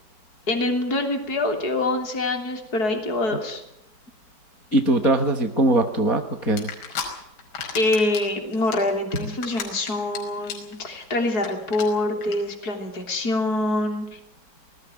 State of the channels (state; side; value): late; right; 4.7 ms